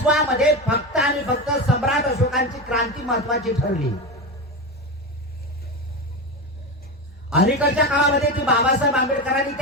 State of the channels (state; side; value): normal; both; correlation 0.19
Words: फक्त आणि फक्त सम्राट अशोकांची क्रांती महत्वाची ठरली. अलीकडच्या काळामध्ये ती बाबासाहेब आंबेडकरांनी